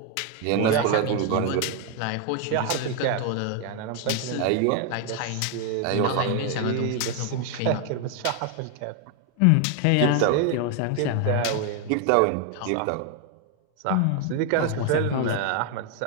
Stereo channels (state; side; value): different; both; correlation 0.01